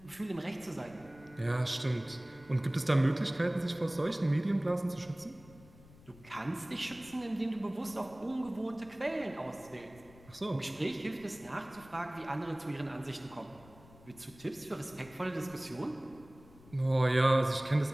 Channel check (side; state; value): left; noise; rumble, 23 dB below the sound